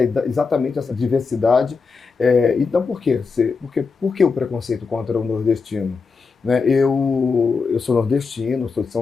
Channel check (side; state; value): right; quieter; 4.8 dB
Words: exatamente essa diversidade. Então, por quê? Por que o preconceito contra o nordestino? Né, eu sou nordestino, sou de São